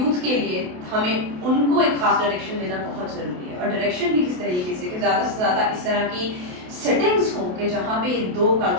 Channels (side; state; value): left; late; 28 ms